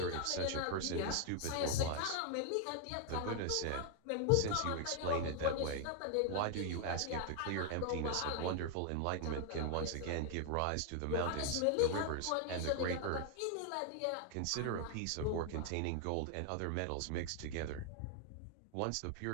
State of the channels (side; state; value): both; different; correlation 0.00